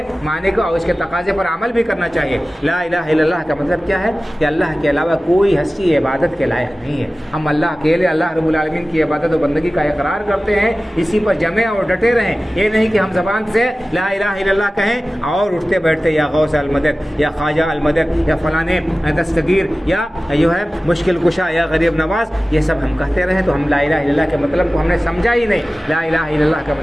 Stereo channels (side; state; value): both; normal; correlation 0.96